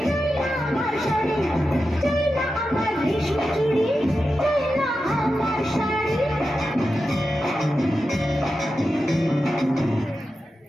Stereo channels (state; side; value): normal; both; correlation 0.91